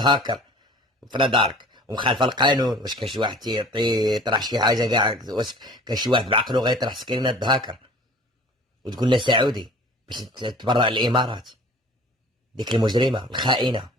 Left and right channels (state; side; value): normal; both; correlation 0.46